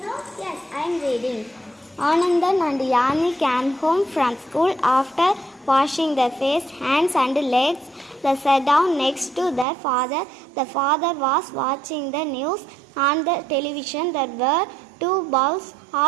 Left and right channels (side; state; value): left; drops out; at 9.7 s